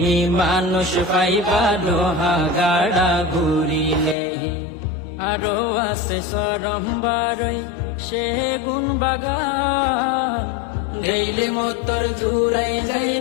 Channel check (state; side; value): drops out; right; at 4.2 s